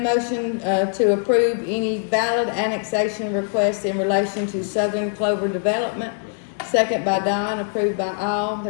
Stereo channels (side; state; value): right; silent; 64 dB below the other